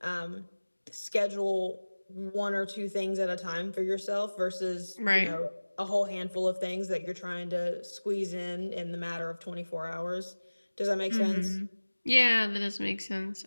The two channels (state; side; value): inverted; both; correlation -1.00